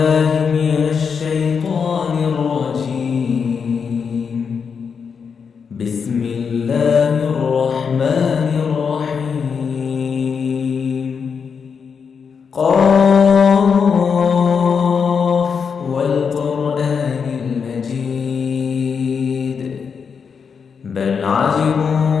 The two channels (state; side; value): quieter; right; 6.2 dB